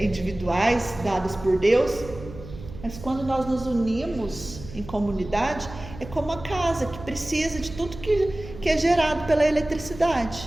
individuais, dadas por Deus. Mas quando nós nos unimos em comunidade, é como a casa que precisa de tudo que é gerado pela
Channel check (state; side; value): noise; right; hum, 14 dB below the sound